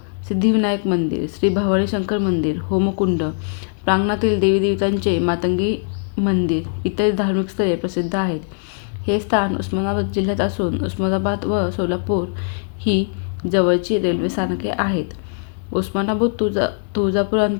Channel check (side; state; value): right; silent; 64 dB below the other